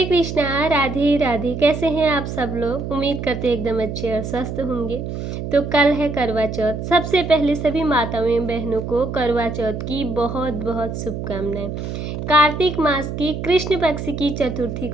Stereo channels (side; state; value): right; noise; hum, 6 dB below the sound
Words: कृष्णा, राधे राधे। कैसे हैं आप सब लोग? उम्मीद करते हैं एकदम अच्छे और स्वस्थ होंगे। तो कल है करवा चौथ। सबसे पहले सभी माताओं एवं बहनों को करवा चौथ की बहुत बहुत शुभकामनाएं। कार्तिक मास की कृष्ण पक्ष की चतुर्थी